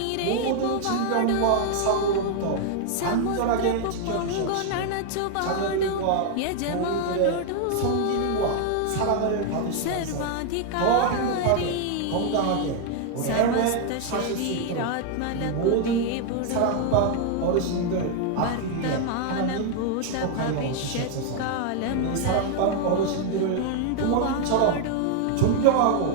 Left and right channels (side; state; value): both; different; correlation 0.00